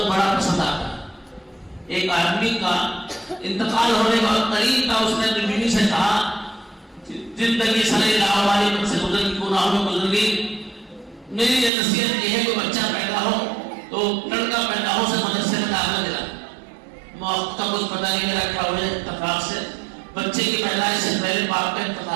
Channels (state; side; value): drops out; left; at 11.7 s